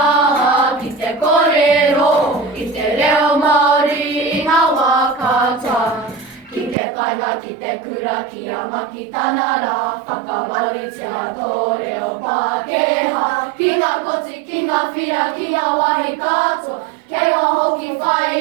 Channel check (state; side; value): drops out; left; at 6.8 s